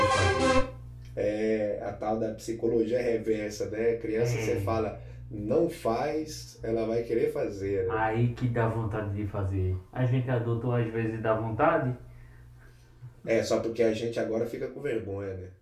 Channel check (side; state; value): both; identical; correlation 1.00